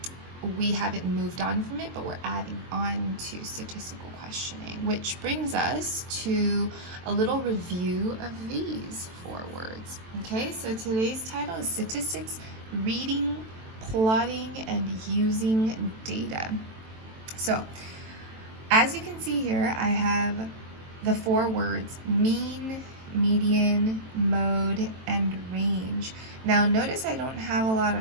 we haven't moved on from it, but we're adding on to statistical questioning, which brings us to a little review of these 4 words. Okay, so today's title is Statistics, Reading, Plotting, and Using Data. So, as you can see here, I have the 4 words mean, median, mode, and range. Now notice I don't have a lot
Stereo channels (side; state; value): left; late; 23 ms